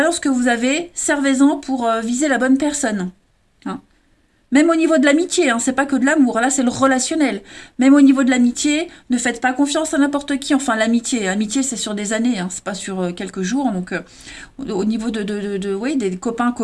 que vous avez, servez-en pour viser la bonne personne. Hein. Même au niveau de l'amitié, hein, c'est pas que de l'amour, là c'est le relationnel. Même au niveau de l'amitié, ne faites pas confiance à n'importe qui. Enfin, l'amitié c'est sur des années, hein, c'est pas sur quelques jours. Donc, au niveau oui, des copains,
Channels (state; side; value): identical; both; correlation 1.00